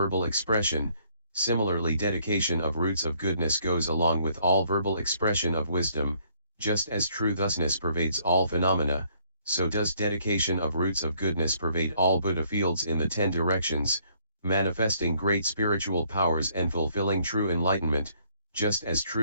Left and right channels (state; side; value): inverted; both; correlation -0.66